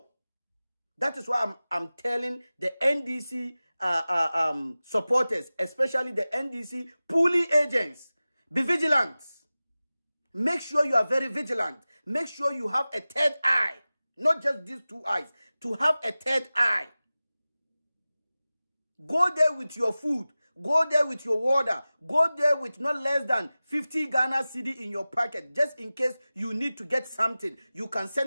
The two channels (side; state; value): both; inverted; correlation -0.97